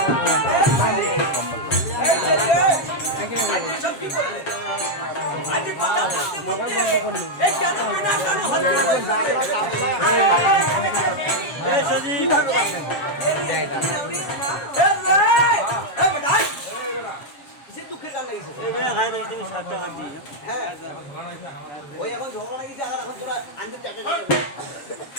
দুঃখের গান লাগিয়েছে হ্যাঁ ওই এখন ঝগড়া লাগিয়েছে আর এখন তোরা আনতে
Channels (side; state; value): right; late; 7.4 ms